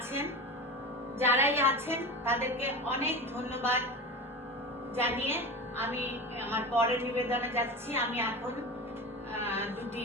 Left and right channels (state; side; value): normal; both; correlation 0.28